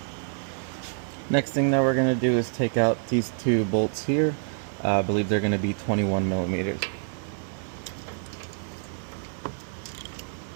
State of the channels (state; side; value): silent; left; 60 dB below the other